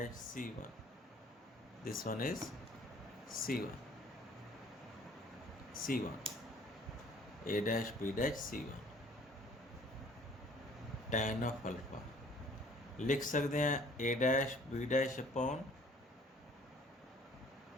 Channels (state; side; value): normal; both; correlation 0.55